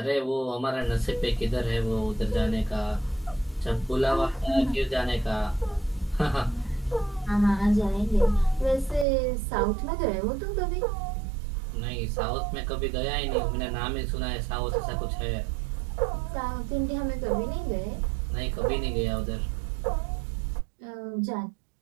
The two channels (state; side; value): drops out; left; at 9.1 s